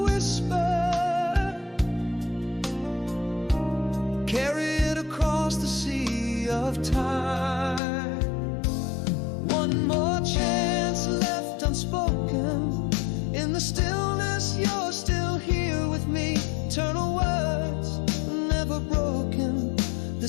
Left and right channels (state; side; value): drops out; right; at 7.8 s